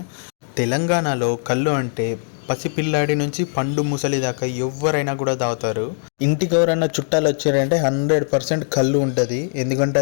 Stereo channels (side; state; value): right; silent; digital silence